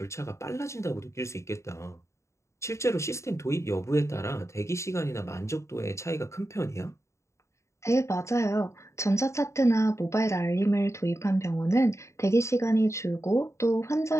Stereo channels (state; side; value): late; right; 0.14 ms